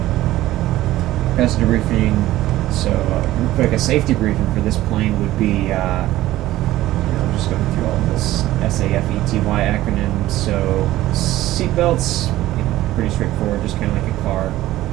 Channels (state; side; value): quieter; left; 15.5 dB